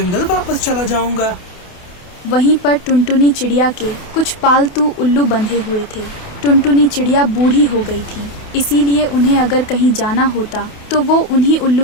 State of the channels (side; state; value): right; late; 28 ms